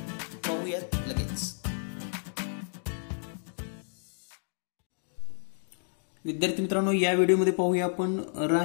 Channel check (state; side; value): silent; right; digital silence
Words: पाहूयात लगेच. विद्यार्थी मित्रांनो, या व्हिडिओमध्ये पाहूया आपण